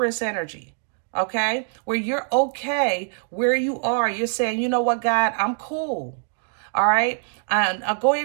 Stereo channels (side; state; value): left; silent; 59 dB below the other